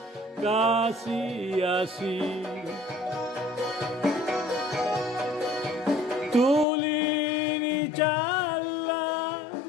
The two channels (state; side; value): drops out; right; at 6.7 s